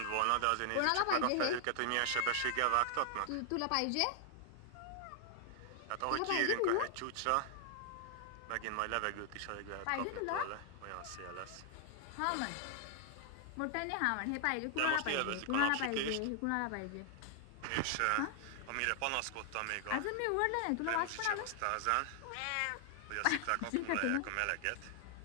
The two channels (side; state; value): both; different; correlation 0.00